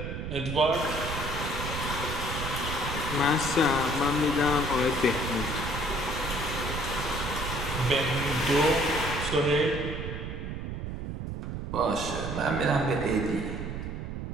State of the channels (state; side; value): noise; right; rumble, 5 dB below the sound